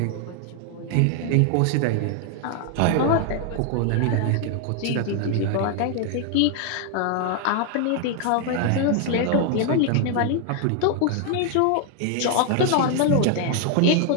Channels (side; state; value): both; different; correlation 0.00